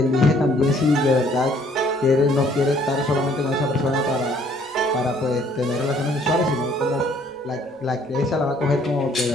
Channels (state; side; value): normal; both; correlation 0.61